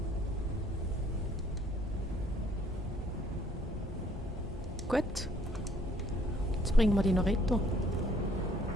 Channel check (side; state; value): both; normal; correlation 0.62